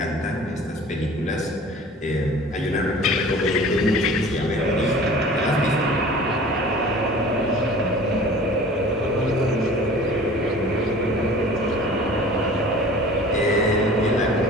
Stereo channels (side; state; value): both; normal; correlation 0.44